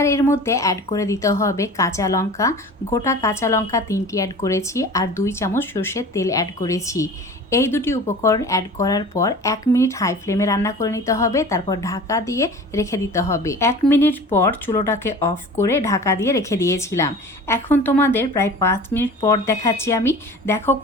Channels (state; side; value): normal; both; correlation 0.40